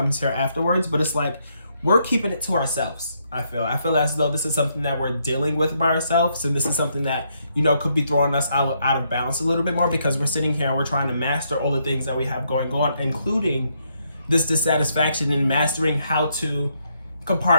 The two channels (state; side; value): inverted; both; correlation -0.75